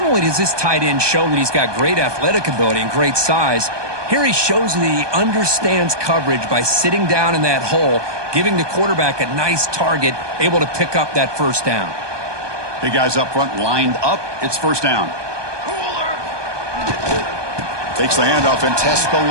only does this tight end show that he's got great athletic ability and great size, here he shows that he understands coverage by sitting down in that hole, giving the quarterback a nice target, able to pick up that first down. Big guys up front lined up. It's first down. Takes the handoff and tests the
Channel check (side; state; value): left; late; 1.2 ms